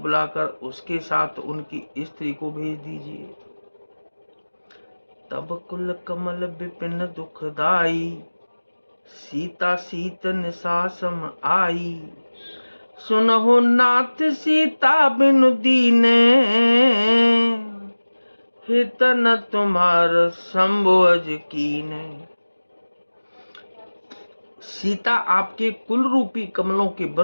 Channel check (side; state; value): both; inverted; correlation -1.00